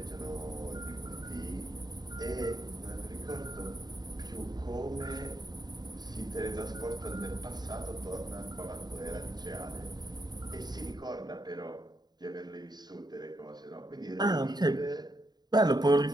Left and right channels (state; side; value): late; left; 0.20 ms